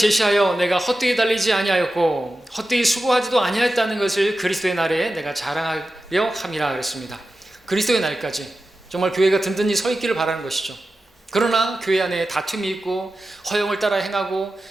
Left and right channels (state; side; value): normal; both; correlation 0.93